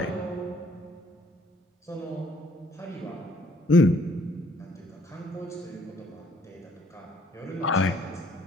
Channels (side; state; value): both; normal; correlation 0.63